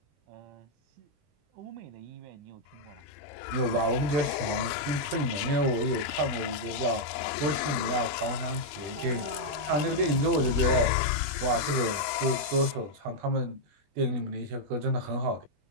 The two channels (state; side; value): late; left; 20 ms